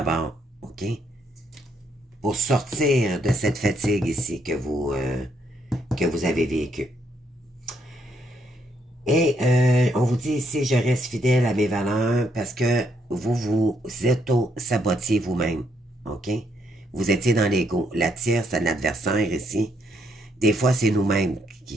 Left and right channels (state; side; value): normal; both; correlation 0.74